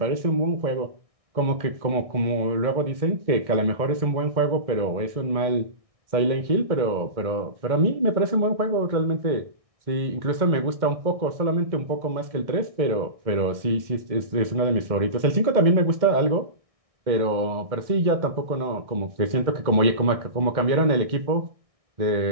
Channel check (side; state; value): left; late; 1.6 ms